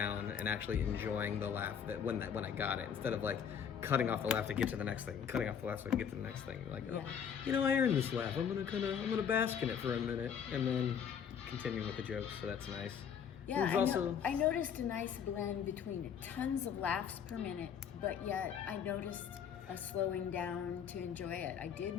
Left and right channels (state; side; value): quieter; right; 7.8 dB